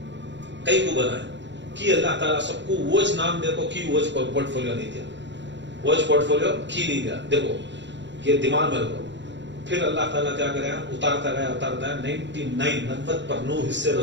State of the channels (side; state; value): left; late; 0.52 ms